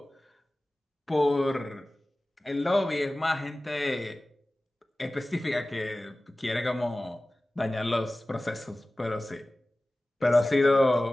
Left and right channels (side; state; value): both; normal; correlation 0.97